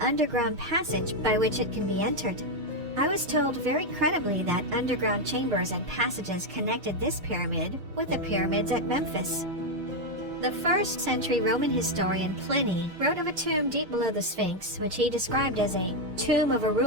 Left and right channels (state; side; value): late; left; 6.2 ms